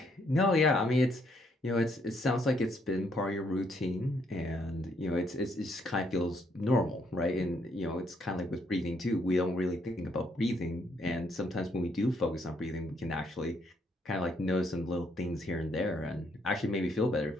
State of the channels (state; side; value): normal; both; correlation 0.71